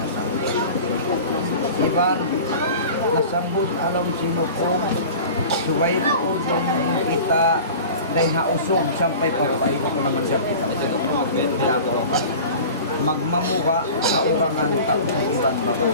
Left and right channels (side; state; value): both; inverted; correlation -0.38